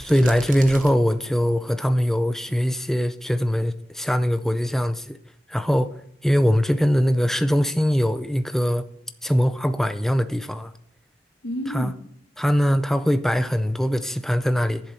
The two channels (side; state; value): both; normal; correlation 0.97